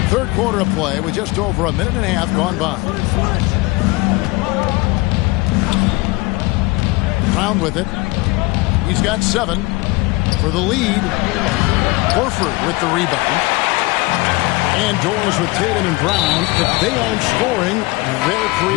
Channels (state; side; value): quieter; right; 23.6 dB